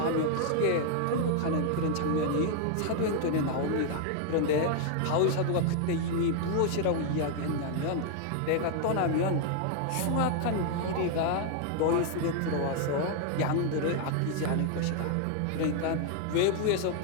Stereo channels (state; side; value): different; both; correlation 0.00